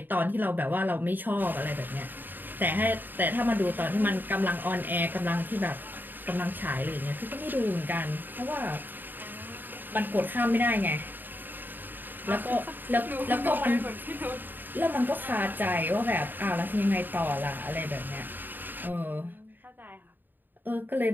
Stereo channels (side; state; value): left; late; 0.091 ms